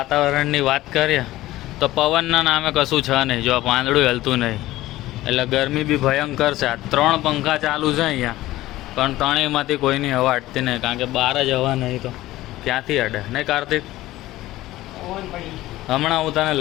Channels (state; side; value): quieter; right; 16.4 dB